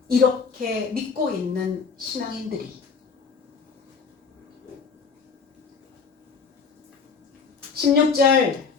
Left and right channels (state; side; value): quieter; right; 5.3 dB